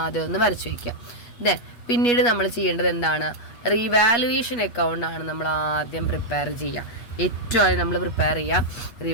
ആദ്യം ഒന്ന് വരച്ച് വയ്ക്കുക. ദെൻ പിന്നീട് നമ്മൾ ചെയ്യേണ്ടത് എന്താണ്? റിവാലുവേഷൻ അക്കൗണ്ടാണ് നമ്മൾ ആദ്യം പ്രിപ്പയർ ചെയ്യുക. ഏറ്റവും ആദ്യം നമ്മൾ പ്രിപ്പയർ ചെയ്യുക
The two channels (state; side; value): late; right; 8.4 ms